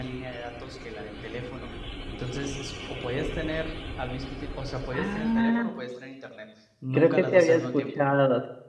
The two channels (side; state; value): both; identical; correlation 1.00